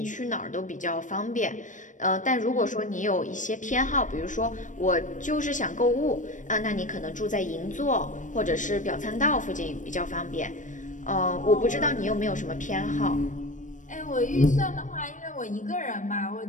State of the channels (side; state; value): right; late; 0.37 ms